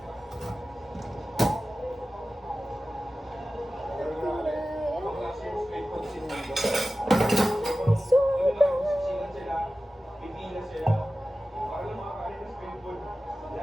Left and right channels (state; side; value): normal; both; correlation 0.95